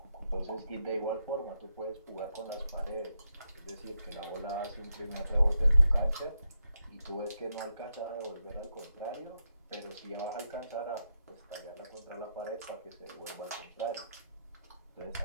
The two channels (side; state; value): both; inverted; correlation -0.84